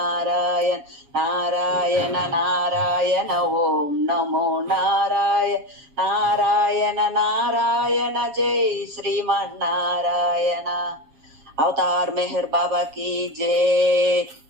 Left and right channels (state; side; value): late; left; 7.3 ms